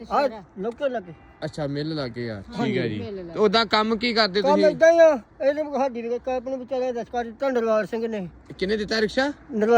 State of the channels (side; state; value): both; identical; correlation 1.00